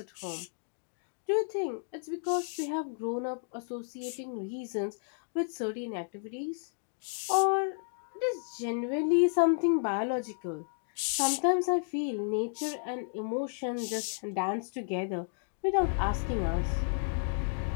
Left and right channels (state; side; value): silent; right; digital silence